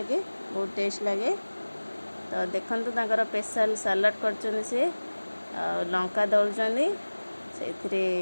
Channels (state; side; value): inverted; both; correlation -1.00